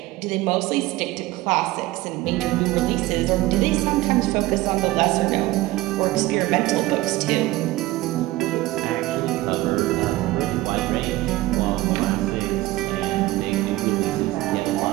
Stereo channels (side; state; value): left; quieter; 18.0 dB